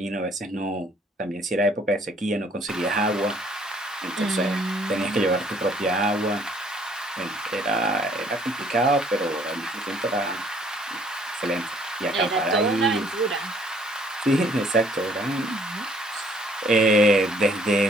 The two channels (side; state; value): both; normal; correlation 0.61